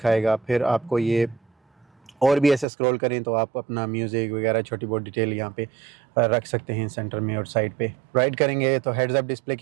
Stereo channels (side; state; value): left; drops out; at 2.7 s